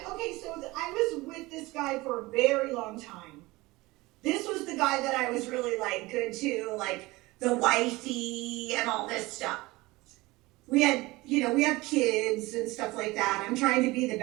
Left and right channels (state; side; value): quieter; left; 21.1 dB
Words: so I was with this guy for a very long time. This was the guy that I was really like good to, like the wifey and all this stuff. We have kids and stuff like that. I'm trying to be the